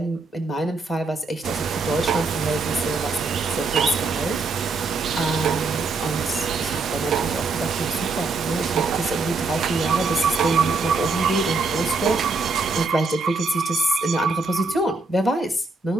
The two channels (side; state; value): left; quieter; 3.8 dB